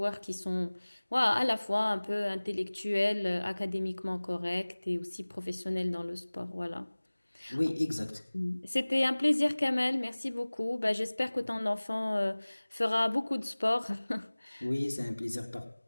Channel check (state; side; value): inverted; both; correlation -1.00